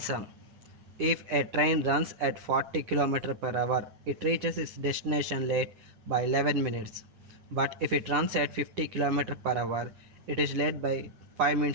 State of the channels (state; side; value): late; left; 9.7 ms